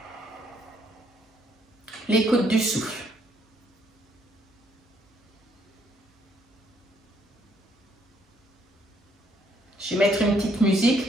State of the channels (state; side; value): normal; both; correlation 0.69